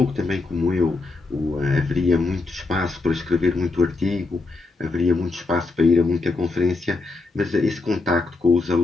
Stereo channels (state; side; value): quieter; right; 3.6 dB